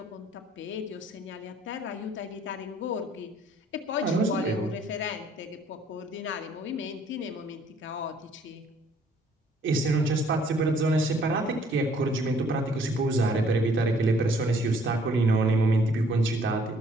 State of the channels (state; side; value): normal; both; correlation 0.61